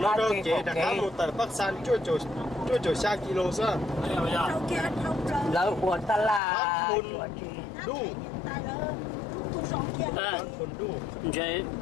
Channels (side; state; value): right; drops out; at 6.4 s